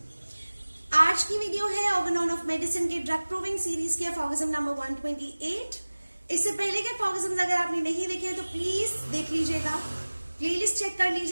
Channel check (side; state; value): both; inverted; correlation -1.00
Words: आज की video है Organon of medicine के drug proving series के फॉर्गजम number 128। इससे पहले के फॉर्गजम्स अगर आपने नहीं देखे हैं तो प्लीज देख लीजिएगा, प्लेलिस्ट चेक कर